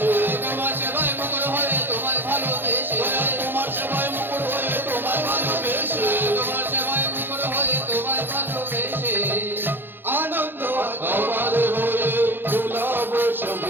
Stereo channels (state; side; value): late; left; 0.10 ms